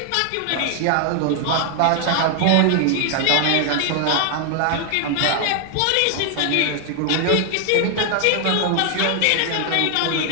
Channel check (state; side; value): different; both; correlation 0.00